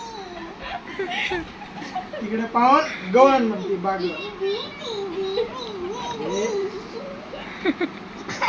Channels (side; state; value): both; identical; correlation 1.00